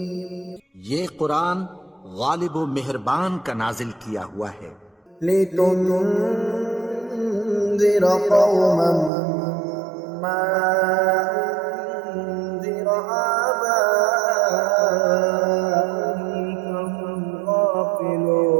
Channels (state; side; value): drops out; left; at 9.1 s